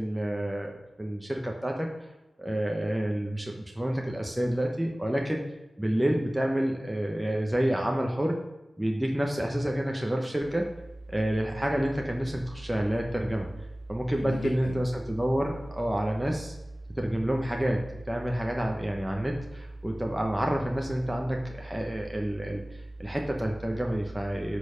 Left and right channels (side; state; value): both; normal; correlation 0.98